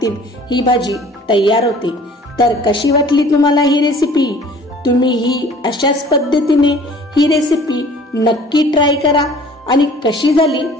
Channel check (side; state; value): both; normal; correlation 0.50